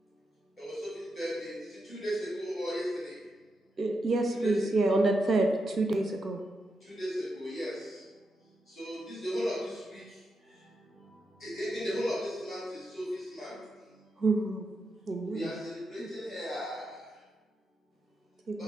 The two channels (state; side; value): normal; both; correlation 0.85